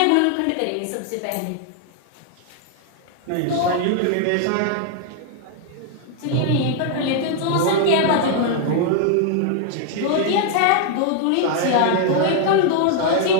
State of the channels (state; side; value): different; both; correlation 0.00